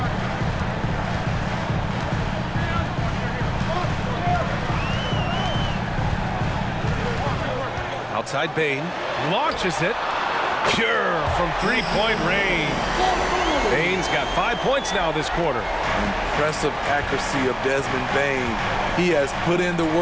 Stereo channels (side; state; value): both; identical; correlation 1.00